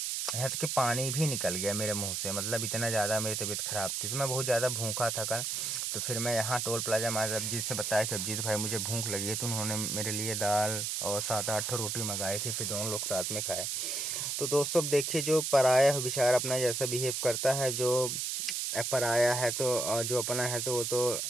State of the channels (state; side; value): noise; right; hiss, 1 dB below the sound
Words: यहाँ तक कि पानी भी निकल गया मेरे मुंह से, मतलब इतना ज़्यादा मेरी तबीयत ख़राब थी। तो मैं बहुत ज़्यादा भूखा था कल। तो फिर मैं यहाँ टोल प्लाजा माँ अभिजीत से बताया कि अभिजीत भाई मुझे भूख लगी है। तो उन्होंने मेरे लिए दाल और 7-8 रोटी मंगाई थी, फिर दोनों लोग साथ में खाए। तो दोस्तों अब देखिए, जो पराया है बेचारा अपना जैसा बिहेव करता है, जो पराया है तो जो अपना है तो वो तो